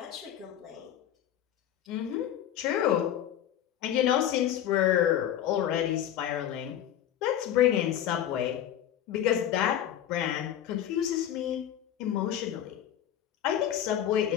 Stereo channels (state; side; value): quieter; right; 10.8 dB